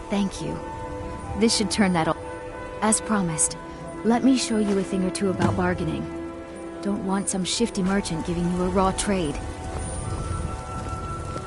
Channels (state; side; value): identical; both; correlation 1.00